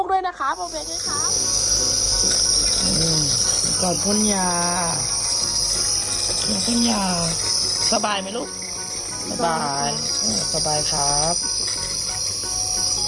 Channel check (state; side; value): identical; both; correlation 1.00